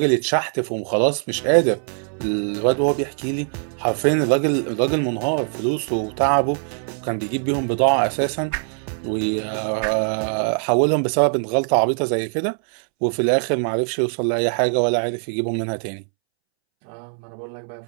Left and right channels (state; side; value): silent; left; 64 dB below the other